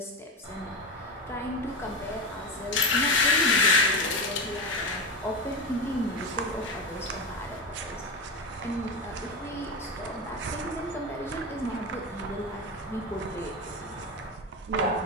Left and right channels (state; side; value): normal; both; correlation 0.19